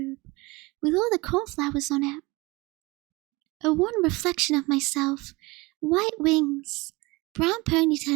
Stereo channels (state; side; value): quieter; left; 23.7 dB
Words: with all the cornflowers on it. A wan reflection of myself, white wings, brown